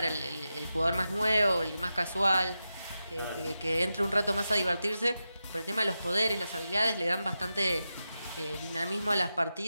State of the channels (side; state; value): both; inverted; correlation -0.91